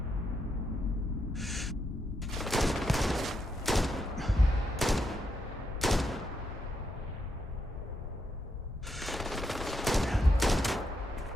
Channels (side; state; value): both; normal; correlation 0.80